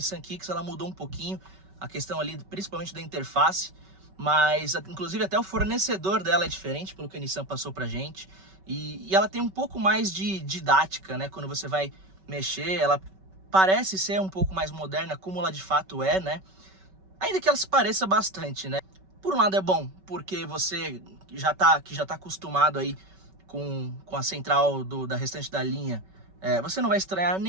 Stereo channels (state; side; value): late; left; 5.3 ms